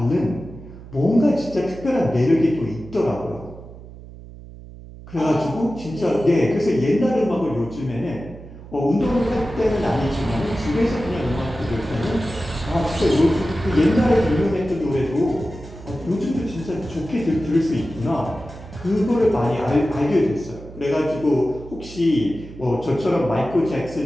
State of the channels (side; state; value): right; noise; hum, 16 dB below the sound